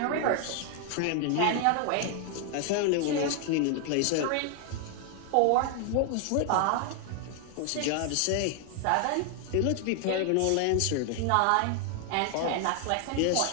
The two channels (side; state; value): both; different; correlation 0.00